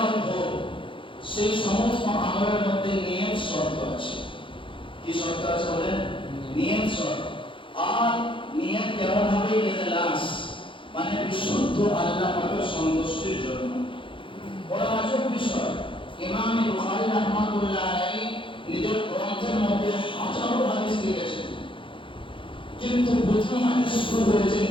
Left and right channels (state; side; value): late; right; 0.25 ms